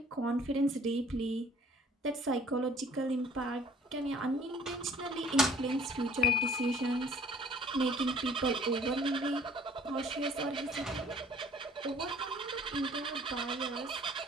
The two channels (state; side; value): normal; both; correlation 0.53